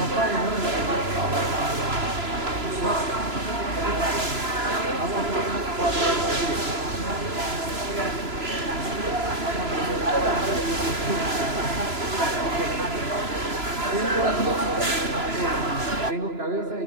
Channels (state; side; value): late; left; 3.0 ms